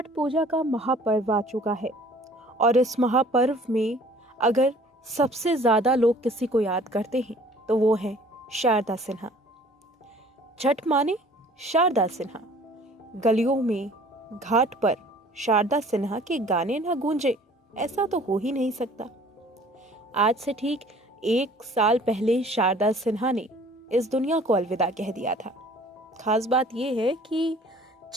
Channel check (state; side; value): normal; both; correlation 0.52